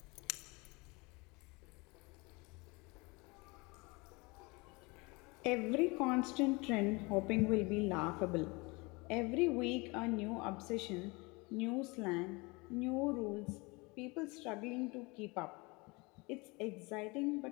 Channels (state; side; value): quieter; right; 26.3 dB